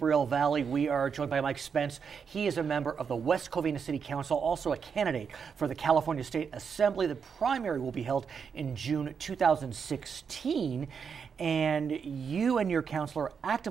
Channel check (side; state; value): left; quieter; 6.4 dB